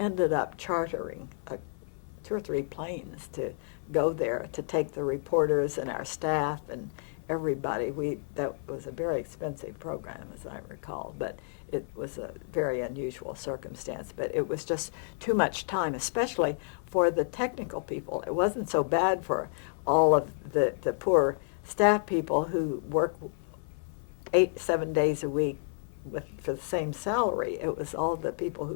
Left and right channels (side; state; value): right; silent; 57 dB below the other